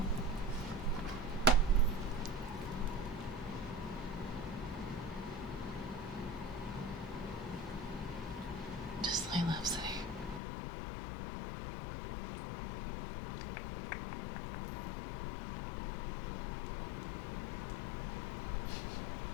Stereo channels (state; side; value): drops out; right; at 10.4 s